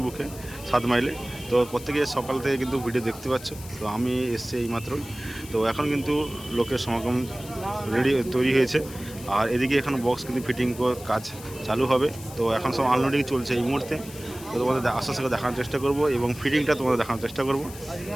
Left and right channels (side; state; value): left; noise; hiss, 16 dB below the sound